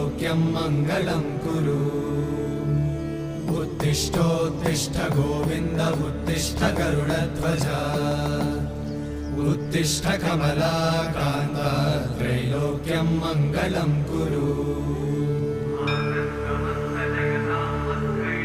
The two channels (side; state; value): both; identical; correlation 1.00